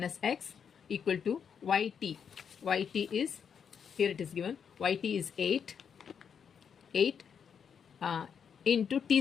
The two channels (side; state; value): right; quieter; 7.2 dB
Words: X equal to YT. YT is, here it is given, YT is 8 into